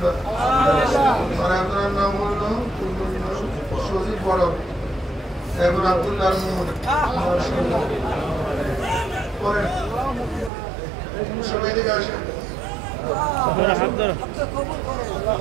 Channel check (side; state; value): left; drops out; at 10.5 s